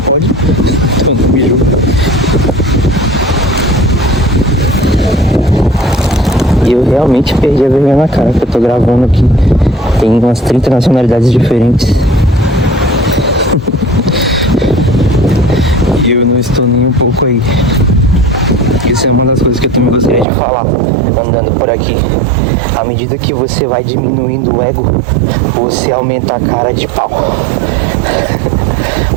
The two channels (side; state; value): left; drops out; at 20.2 s